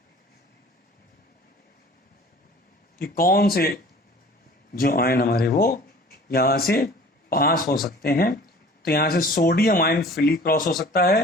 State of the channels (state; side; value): normal; both; correlation 0.47